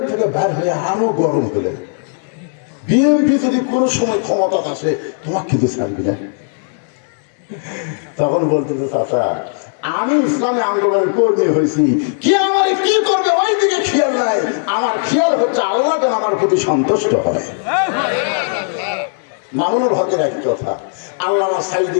থেকে বের হয়ে আরো গরম হলে বিএনপি যদি কোনো সময় ক্ষমতা আসে তোমাকে কিন্তু ছাড়বি না। তখন বলতেছে, চাচা আমি ইসলামী আন্দোলনের কর্মী হয়েছি, কি আমার কি করবে ওই দিকে খেয়াল নাই, আমার খেয়াল হচ্ছে আল্লাহ যেন আমার প্রতি সন্তুষ্ট হয়। মামুনুল হকের একই কথা, আল্লাহ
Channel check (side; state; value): right; silent; digital silence